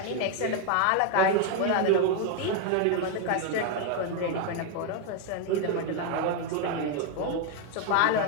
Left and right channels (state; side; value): different; both; correlation 0.01